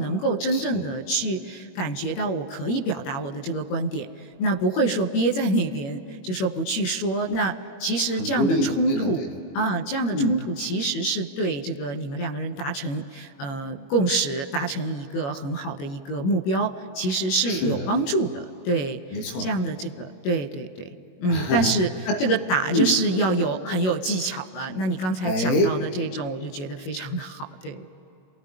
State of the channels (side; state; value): right; late; 22 ms